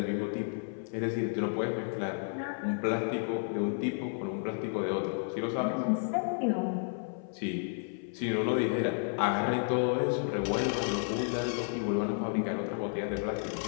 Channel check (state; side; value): silent; right; 56 dB below the other